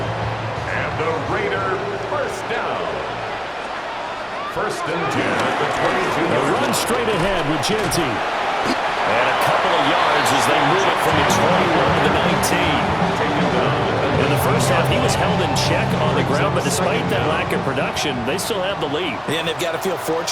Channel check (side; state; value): both; identical; correlation 1.00